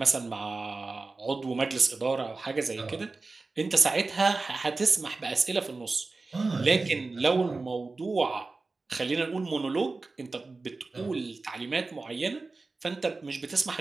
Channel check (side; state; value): left; quieter; 3.7 dB